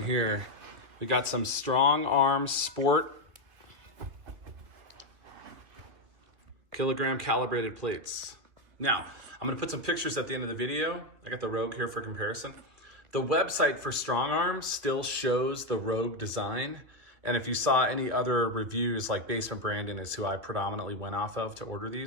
here. We got some StrongArm Sport Calibrated Plates. Now, I'm gonna put some pictures at the end of the video. I got the Rogue here for comparison. The website for StrongArm still shows the Rogue design. And if you saw any other reviews, like Basement Brandon is who I predominantly went off of to order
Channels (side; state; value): left; late; 2.5 ms